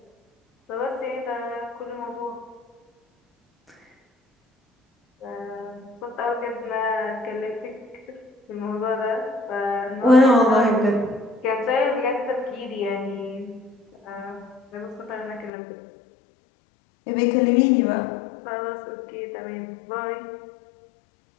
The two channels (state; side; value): drops out; right; at 15.5 s